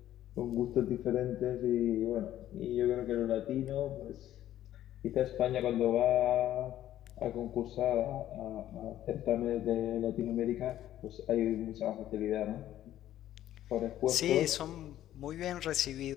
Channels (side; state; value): right; quieter; 12.6 dB